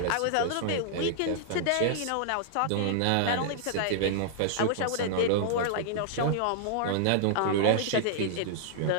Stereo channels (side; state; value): both; different; correlation -0.01